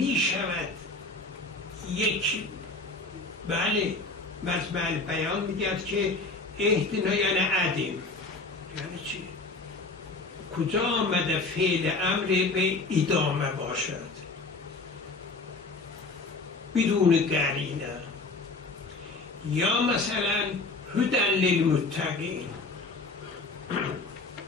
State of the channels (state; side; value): quieter; right; 3.4 dB